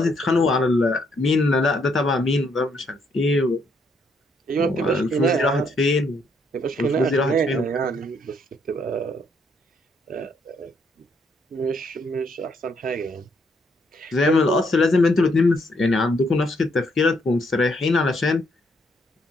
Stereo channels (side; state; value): both; normal; correlation 0.72